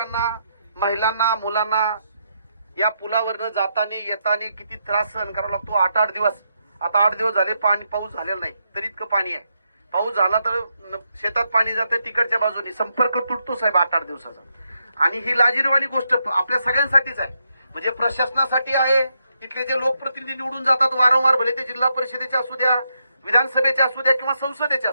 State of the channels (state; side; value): inverted; both; correlation -0.81